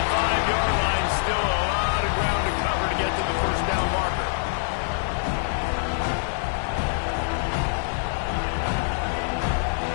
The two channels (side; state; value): right; silent; digital silence